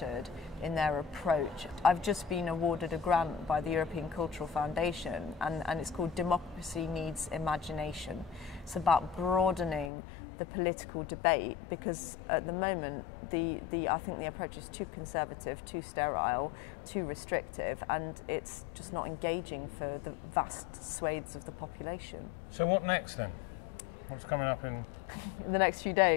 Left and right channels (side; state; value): right; drops out; at 9.9 s